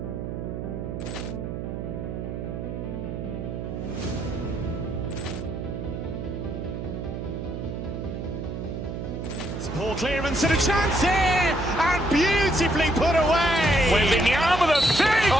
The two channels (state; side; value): noise; right; hum, 6 dB below the sound